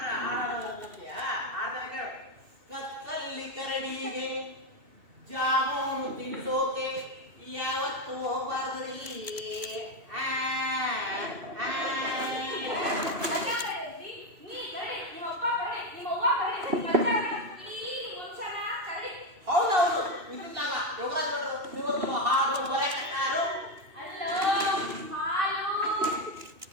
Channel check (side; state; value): left; late; 2.7 ms